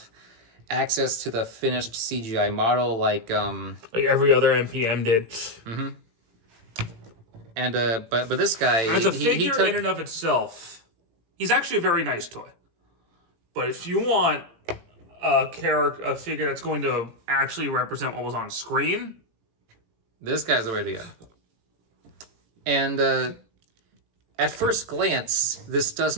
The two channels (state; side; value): late; left; 18 ms